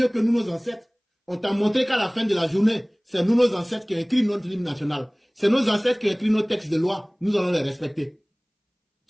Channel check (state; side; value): identical; both; correlation 1.00